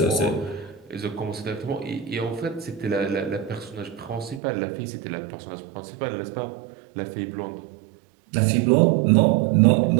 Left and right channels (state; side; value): drops out; left; at 4.4 s